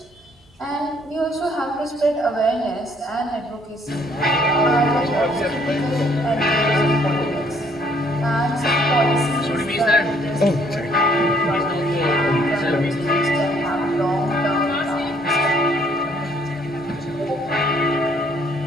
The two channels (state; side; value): normal; both; correlation 0.64